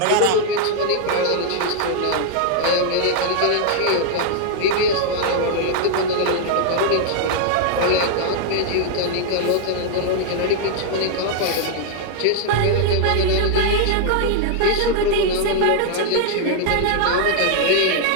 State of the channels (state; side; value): different; both; correlation 0.00